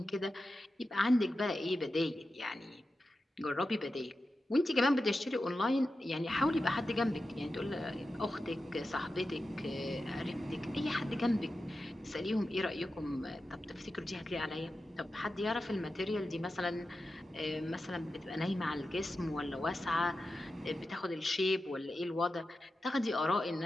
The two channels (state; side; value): normal; both; correlation 0.91